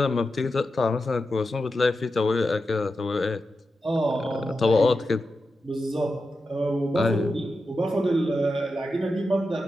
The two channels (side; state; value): both; normal; correlation 0.90